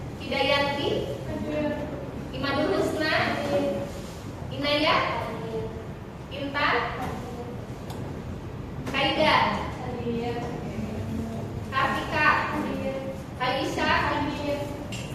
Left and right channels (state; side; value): identical; both; correlation 1.00